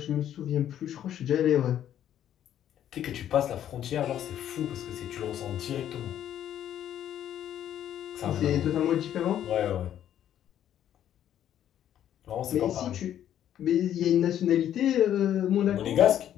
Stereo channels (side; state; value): right; quieter; 10.8 dB